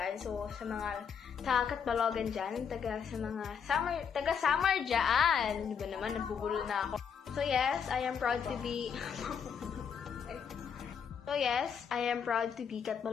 So, sa mga taga-Catbalogan dyan, taga Samar dyan. Di ba naman, nagbubulol na ako. So, yes, I am proud to be...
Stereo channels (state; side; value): quieter; right; 7.1 dB